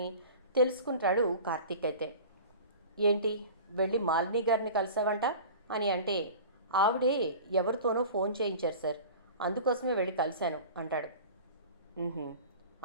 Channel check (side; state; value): both; inverted; correlation -0.38